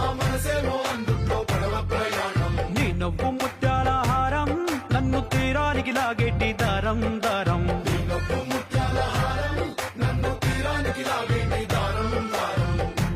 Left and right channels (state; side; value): identical; both; correlation 1.00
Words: నీ నవ్వు ముత్యాల హారం, నన్ను తీరానికి లాగేటి దారం దారం.